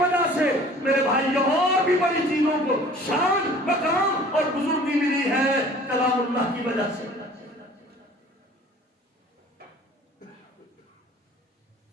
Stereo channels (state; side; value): normal; both; correlation 0.49